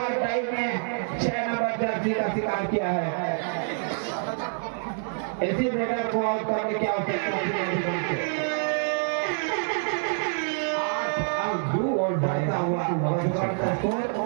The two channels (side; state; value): left; silent; 60 dB below the other